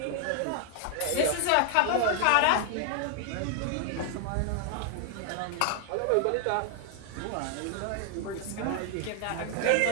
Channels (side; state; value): both; different; correlation 0.00